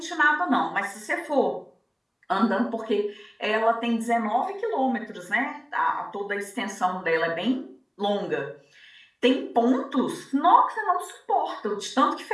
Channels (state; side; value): identical; both; correlation 1.00